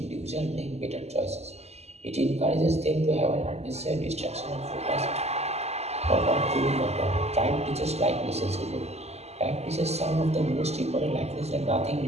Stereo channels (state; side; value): late; left; 0.31 ms